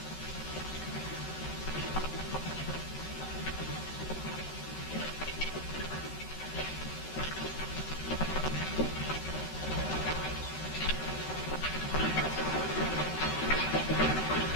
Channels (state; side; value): late; right; 13 ms